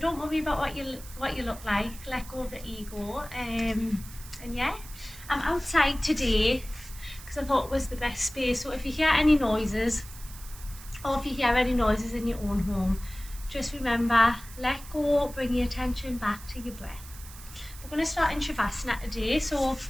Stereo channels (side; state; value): right; noise; hiss, 17 dB below the sound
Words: don't worry about what you look like. Let go of the ego. And yeah, I'm outside today because I thought it was the best space. So if you hear any noises, or if you hear any noises in your own home, just remember, let go, bring your attention back to your breath. We're going to start in Shavasana today, so